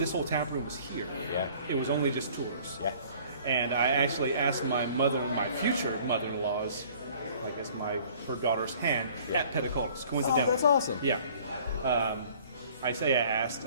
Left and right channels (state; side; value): inverted; both; correlation -0.53